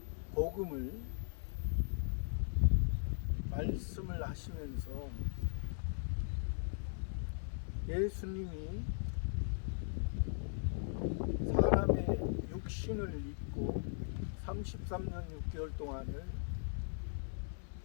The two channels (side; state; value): right; silent; 52 dB below the other